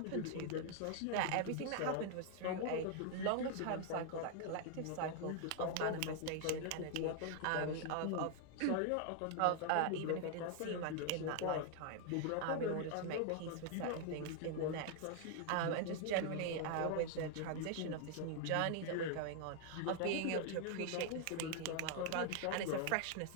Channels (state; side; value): different; both; correlation 0.00